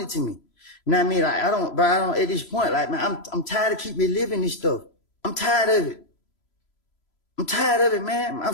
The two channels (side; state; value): right; late; 3.0 ms